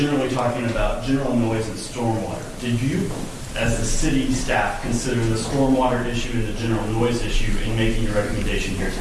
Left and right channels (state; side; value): identical; both; correlation 1.00